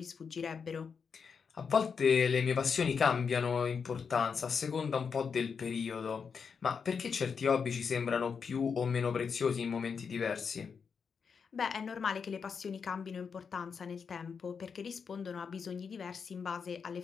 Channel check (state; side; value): quieter; right; 6.0 dB